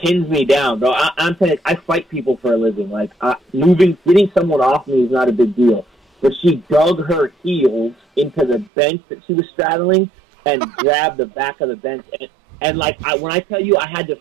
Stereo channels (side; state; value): left; drops out; at 8.7 s